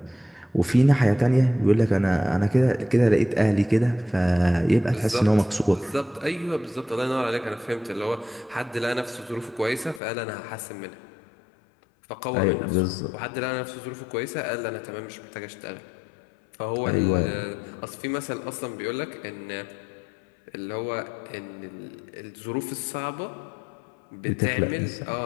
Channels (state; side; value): drops out; right; at 10.0 s